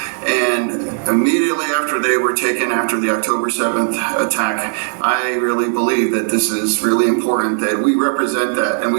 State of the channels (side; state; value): left; silent; digital silence